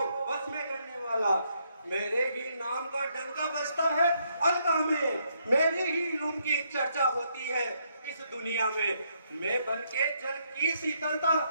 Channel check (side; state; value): both; inverted; correlation -0.74